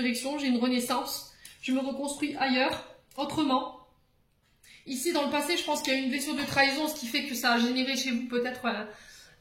j'ai une renaissance. Je me reconstruis ailleurs, autrement. Ici, dans le passé, je pense qu'il y a eu une blessure de trahison, ce qui fait que ça a généré chez vous peut-être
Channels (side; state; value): both; identical; correlation 1.00